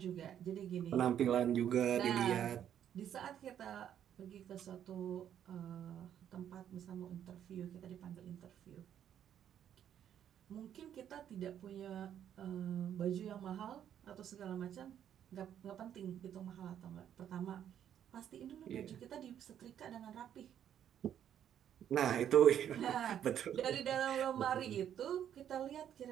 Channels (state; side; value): quieter; left; 9.8 dB